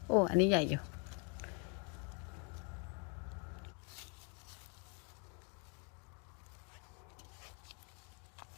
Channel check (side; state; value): right; quieter; 35.1 dB